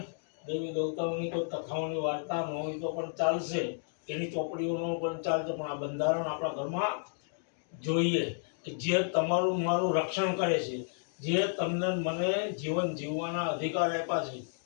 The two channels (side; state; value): right; silent; digital silence